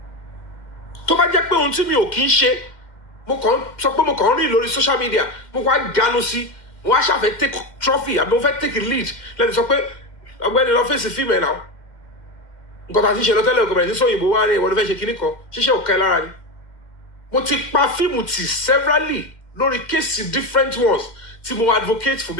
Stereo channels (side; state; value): right; late; 2.1 ms